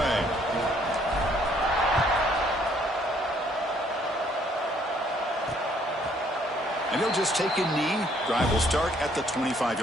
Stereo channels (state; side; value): normal; both; correlation 0.65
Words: And he'll just take a knee. Drive will start at the